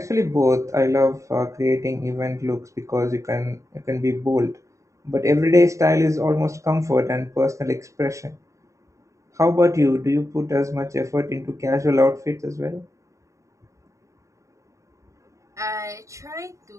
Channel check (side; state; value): left; late; 0.15 ms